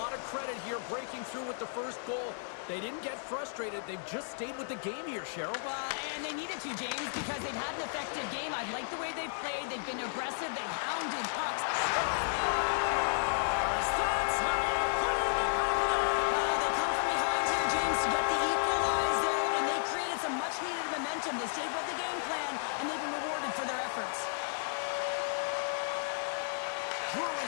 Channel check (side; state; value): right; silent; digital silence